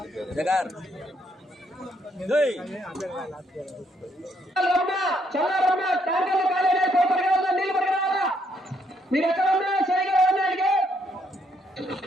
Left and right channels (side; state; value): both; normal; correlation 0.72